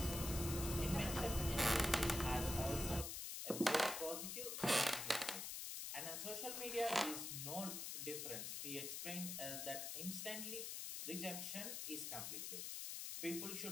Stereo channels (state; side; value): noise; left; hiss, 4 dB below the sound